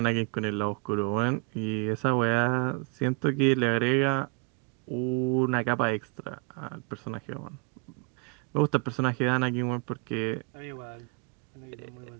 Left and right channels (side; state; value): left; quieter; 32.3 dB